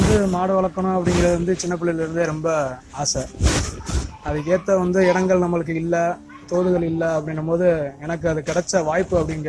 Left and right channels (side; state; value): both; identical; correlation 1.00